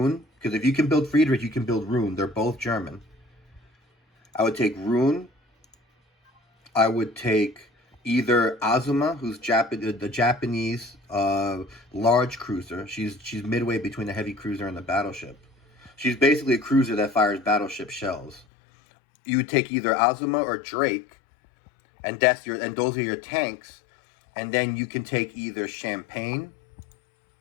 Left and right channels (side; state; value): right; drops out; at 18.4 s